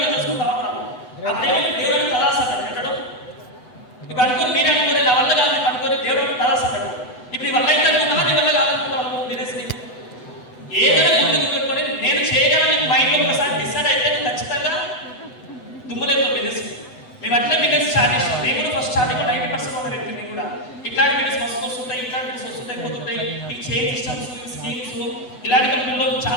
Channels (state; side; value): late; right; 8.0 ms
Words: చేసుకుంటా ఉంటారు. ఆ దేవుడు తలాసాడు ఎక్కడో. ఇప్పుడు అనుకోని మీరే అనుకోని నా వల్ల కాదు అనుకోని దేవుడు తలాసాడు. ఇప్పుడు నీ వల్ల అయితే అనుకున్నావా, నీ వల్ల కాదనుకున్నావు బిజినెస్ని ఏదైనా ముందుకు పెట్టుకొని నేను చేయగలని మైండ్లో ఒకసారి డిసైడ్ అయితే ఖచ్చితంగా దుమ్ములేదు బిజినెస్. మేము అట్లే బిజినెస్ స్టార్ట్ చేస్తాం. నేను కూడా ఫస్ట్ స్టార్టింగ్ 90% ఉన్న వ్యక్తి. నేను కూడా ఇట్లాంటి బిజినెస్ వస్తుంటాయి, ఇట్లాంటి బిజినెస్ వస్తుంటాయి, పోతుంటాయి. ఈ చేంజ్ సిస్టమ్స్, స్కీమ్స్, ఇలాంటి కంపెనీలో